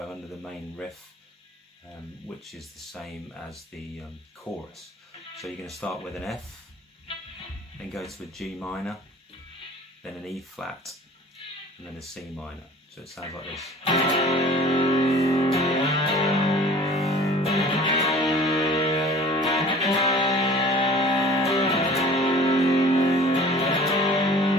under the main riff, which is the same as the chorus. So you're going to start with an F, then go to a G minor, then an E flat, and then a C minor. So it sounds like this.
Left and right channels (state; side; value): normal; both; correlation 0.46